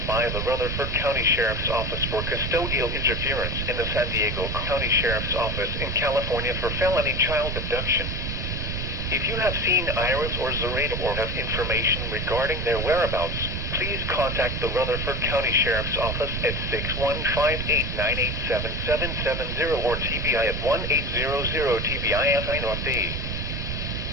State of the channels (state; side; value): noise; right; rumble, 3 dB below the sound